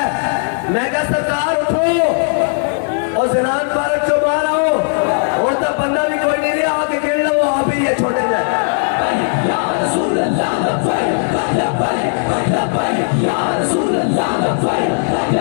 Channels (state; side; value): silent; right; digital silence